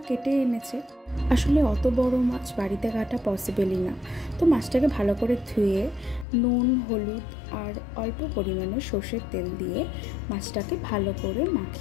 কেটে এনেছে। আসলে অত বড় মাছ বাড়িতে কাটা পসিবলই না। তো মাছটাকে ভালো করে ধুয়ে নুন, হলুদ আর অল্প পরিমাণে সর্ষের তেল দিয়ে মাছটাকে ভালো করে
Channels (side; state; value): right; drops out; at 6.2 s